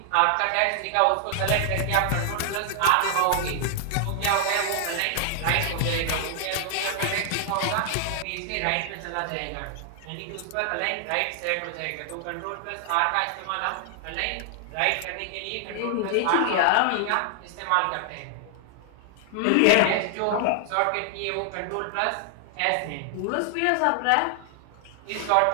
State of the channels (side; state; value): both; different; correlation 0.00